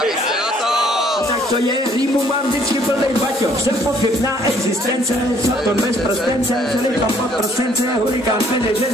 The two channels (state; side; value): normal; both; correlation 0.62